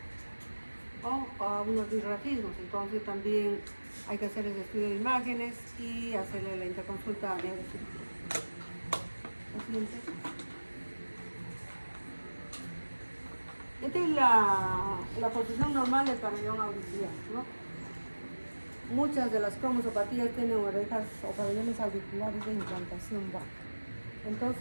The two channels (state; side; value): inverted; both; correlation -1.00